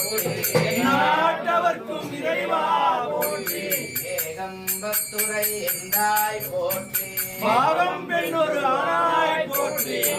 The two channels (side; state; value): both; identical; correlation 1.00